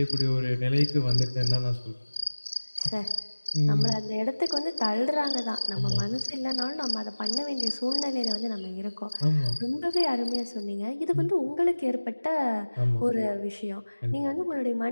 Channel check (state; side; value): inverted; both; correlation -1.00